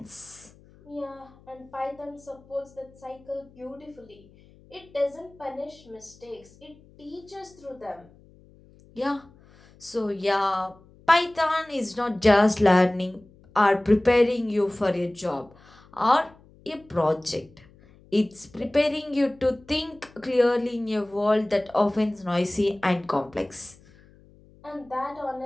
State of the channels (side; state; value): left; noise; hum, 26 dB below the sound